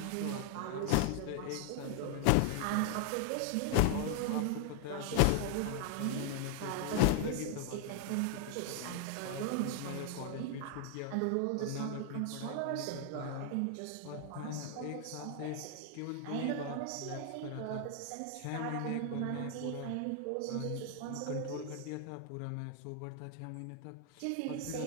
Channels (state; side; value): different; both; correlation 0.00